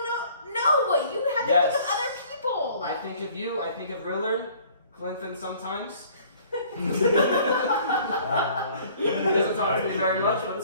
No, you have to Yes. think of other people. I think of you. I think of Rillard, Glenfin sometimes. He doesn't talk to me very much, but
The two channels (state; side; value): inverted; both; correlation -0.54